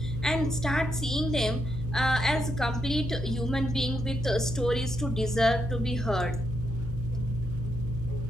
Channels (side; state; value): left; noise; hum, 7 dB below the sound